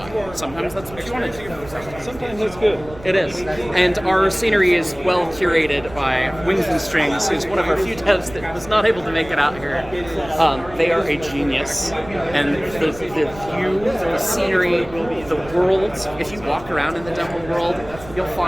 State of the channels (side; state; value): right; noise; rumble, 17 dB below the sound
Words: Sometimes that's what you want to do. Sometimes it's good. It is. And our scenery is well curated by Wings and Strings, who's one of our few devs that was not able to make it out here. They are a genius. And the view, the scenery, the world, if you walk around in the demo world, you'll